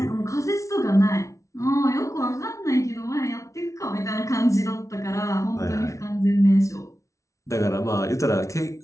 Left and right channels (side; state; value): right; late; 0.15 ms